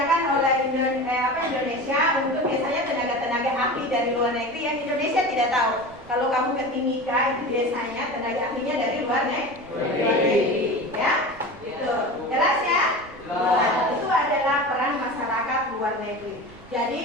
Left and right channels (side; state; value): right; noise; rumble, 22 dB below the sound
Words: oleh Indonesia untuk biasanya tenaga-tenaga ahli dari luar negeri yang Indonesia tidak tahu. Kalau kamu ke Timika itu biasanya tenaga ahlinya dari luar negeri. Ya, itu jelas ya. Nah, itu adalah peran masyarakat luar negeri.